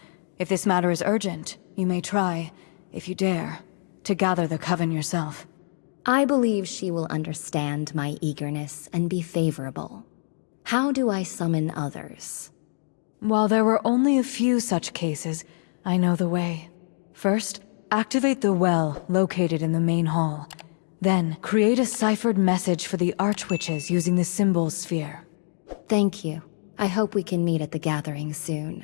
If this matter is urgent, you may try, if you dare, to gather the coven yourself. I believe she will understand my eagerness and be favorable. How do I summon others? While there were only a few such cases, I know the way. First, activate the well located in the main hall. Then, create a ciphered message for the Archwitches using the symbol sphere. Thank you. I hope we can meet at the gathering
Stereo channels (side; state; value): right; silent; 61 dB below the other